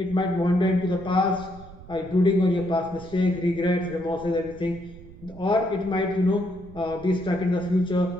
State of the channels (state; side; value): noise; right; rumble, 18 dB below the sound